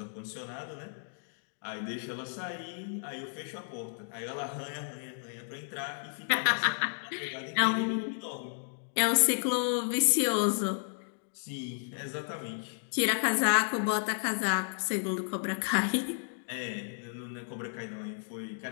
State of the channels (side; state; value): right; silent; digital silence